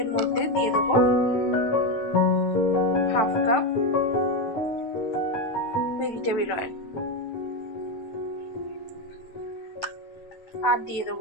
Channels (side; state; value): right; late; 9.0 ms